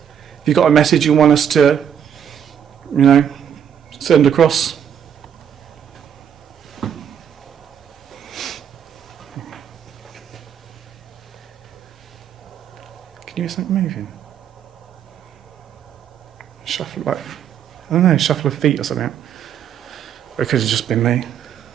If you've got a message you want us to, send across, can you hear something moving? Shuffle, like, I don't know, shuffle of feet or something. Or it could have just been me.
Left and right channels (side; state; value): left; quieter; 8.7 dB